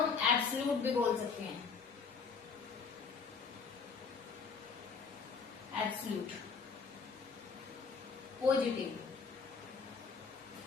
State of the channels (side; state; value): right; quieter; 5.4 dB